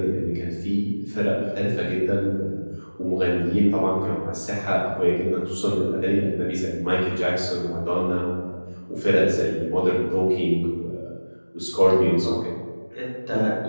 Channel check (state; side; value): inverted; both; correlation -1.00